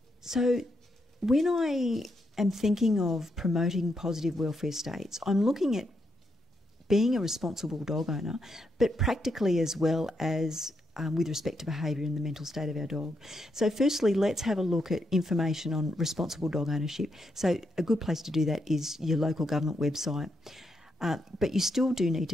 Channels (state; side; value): normal; both; correlation 0.81